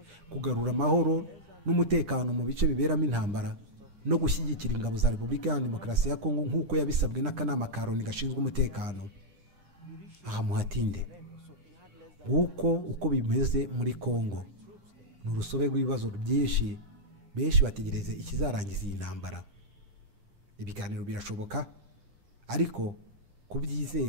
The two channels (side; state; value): left; late; 9.9 ms